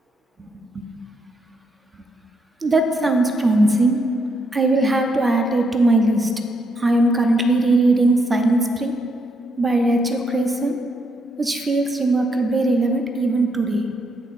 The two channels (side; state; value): both; normal; correlation 0.77